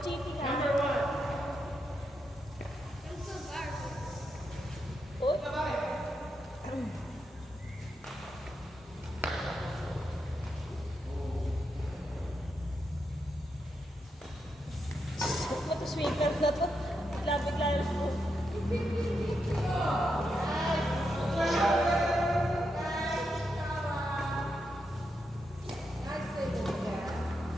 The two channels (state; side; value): normal; both; correlation 0.84